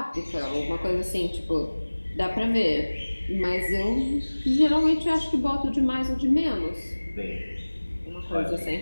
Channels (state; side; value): inverted; both; correlation -1.00